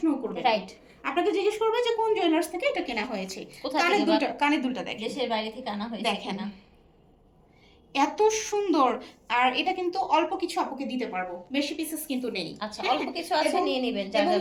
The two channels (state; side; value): identical; both; correlation 1.00